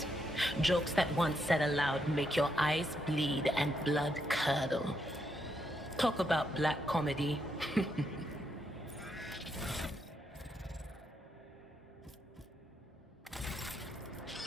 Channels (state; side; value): normal; both; correlation 0.79